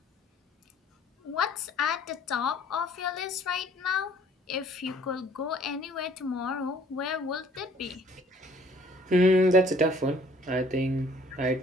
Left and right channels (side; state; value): both; normal; correlation 0.57